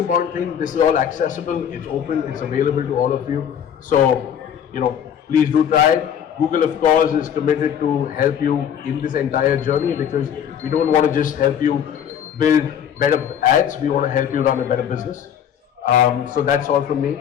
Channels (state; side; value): quieter; right; 8.8 dB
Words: thing, this is all accessible, it's open, it's available to all of you. So, please do try it. Google, of course, is committed to help you in this entire journey, because we don't want to just help you build better ads, we want to help you run a better business. So that's all from